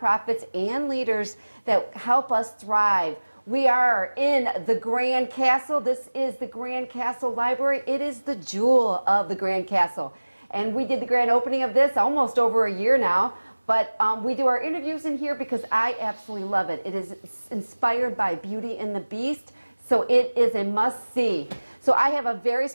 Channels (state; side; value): inverted; both; correlation -1.00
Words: and leaders that help us thrive. We are in the Grand Castle. This is the Grand Castle Library. It is the jewel of the Grand Castle. And we did the grand opening of this almost over a year now. But we do our interviews in here because I absolutely love it. It is inspired by Beauty and the Beast. So it is a must-see. So I have a very